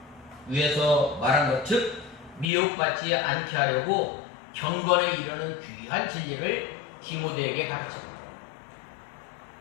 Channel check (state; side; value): drops out; right; at 2.5 s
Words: 말한 것, 즉 미혹받지 않게 하려고 경건에 이르는 귀한 진리를 디모데에게 가르칩니다.